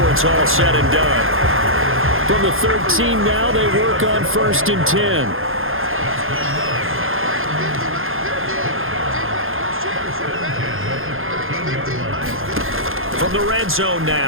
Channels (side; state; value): left; late; 0.60 ms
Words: it's all said and done. From the 13 now, they work on 1st and 10. From the red zone